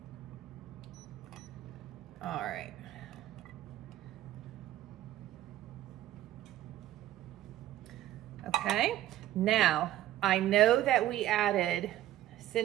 All right. Okay, now I know that we added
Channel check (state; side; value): quieter; left; 13.8 dB